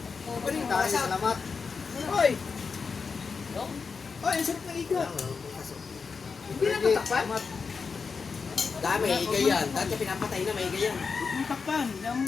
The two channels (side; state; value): right; quieter; 5.2 dB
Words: Tayo, salamat. Hoy. Hoy, ang sarap ng igat. Hindi na tatakpan? Dami, iga yan. Dati pinapatay na, may iga yan. Ang takpan. Damo